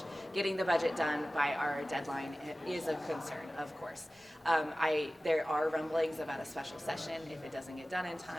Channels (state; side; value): normal; both; correlation 0.97